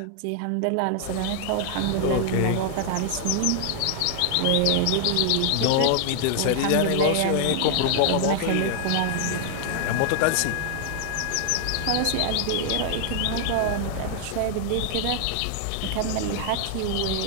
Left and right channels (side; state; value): both; different; correlation 0.00